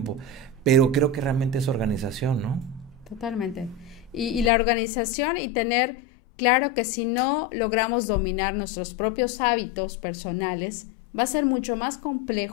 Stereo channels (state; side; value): drops out; right; at 4.5 s